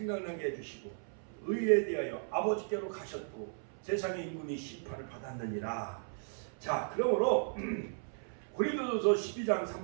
해주시고, 의에 대하여 아버지께로 가셨고 세상의 임금이 심판을 받았느니라. 자, 그러므로 고린도전서 12장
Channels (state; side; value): silent; left; 54 dB below the other